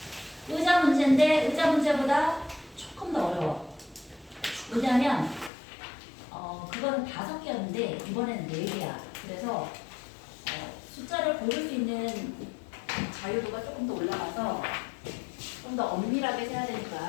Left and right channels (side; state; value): right; drops out; at 5.5 s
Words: 의자 문제인데 의자 문제보다 조금 더 어려워. 왜냐하면 그거는 5개였는데 이번에는 4개야. 그래서 숫자를 고를 수 있는 자유도가 조금 더 올라가서 좀 더 엄밀하게 세야